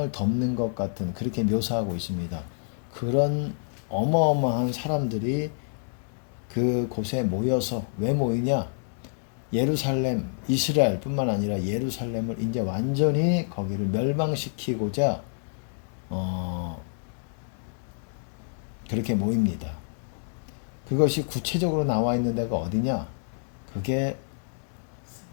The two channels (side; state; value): right; silent; digital silence